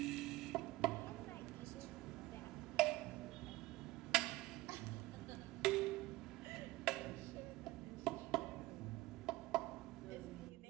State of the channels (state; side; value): quieter; left; 18.8 dB